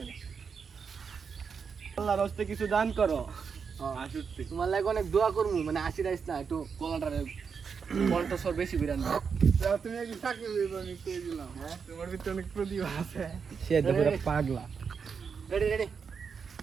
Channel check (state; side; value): quieter; left; 6.0 dB